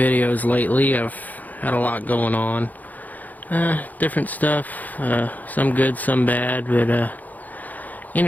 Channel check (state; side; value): late; right; 0.081 ms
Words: lately. I've had a lot going on. Different stuff, some good, some bad, but